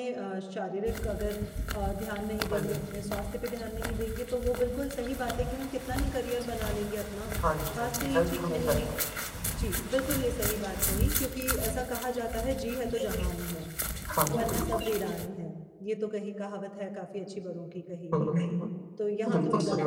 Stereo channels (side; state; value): both; identical; correlation 1.00